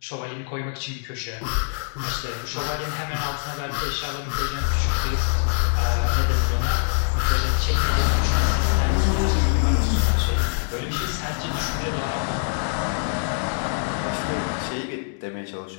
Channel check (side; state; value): right; silent; 63 dB below the other